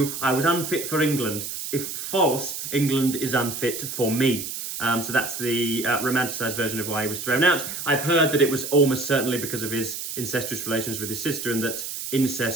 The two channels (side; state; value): right; noise; hiss, 6 dB below the sound